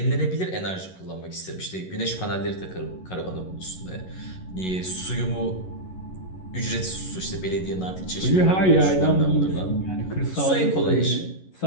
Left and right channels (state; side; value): late; right; 11 ms